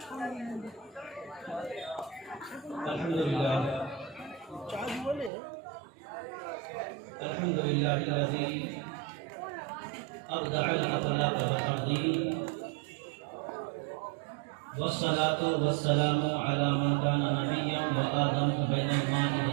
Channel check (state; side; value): drops out; left; at 5.3 s